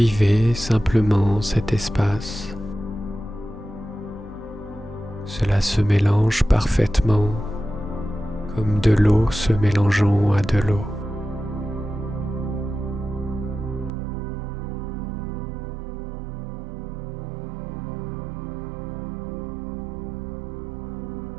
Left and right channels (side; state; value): left; drops out; at 13.9 s